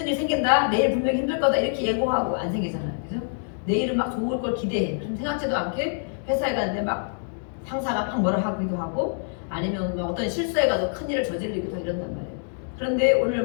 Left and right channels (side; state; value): right; silent; digital silence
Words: 일 생긴다. 내일 분명히 힘들 거다. 이렇게 예고하고 안 생기잖아요. 그죠? 내일은 막 좋을 걸 기대해. 좀 생각지도 않게 회사에 갔는데 막 상사가 막 뭐라 하기도 하고 아니면 뭐 어떤 실수해가지고 큰일을 저지르기도 하고 이런단 말이에요. 그런데 오늘